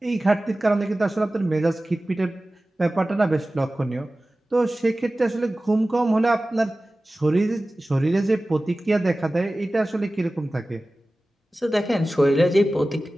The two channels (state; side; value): normal; both; correlation 0.97